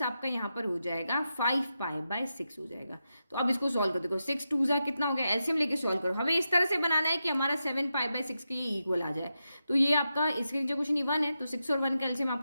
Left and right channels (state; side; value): inverted; both; correlation -0.88